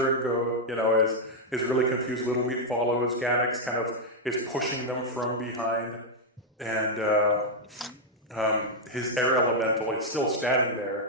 and is really confused. Little Meat follows. Ganix kind of is pushing them from behind, and his air elemental is still standing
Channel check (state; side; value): normal; both; correlation -0.02